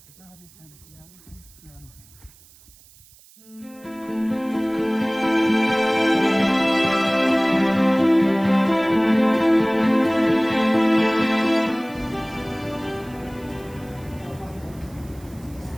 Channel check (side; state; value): right; noise; hiss, 26 dB below the sound